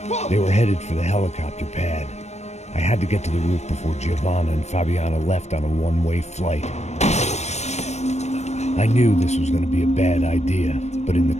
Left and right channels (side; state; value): right; late; 0.32 ms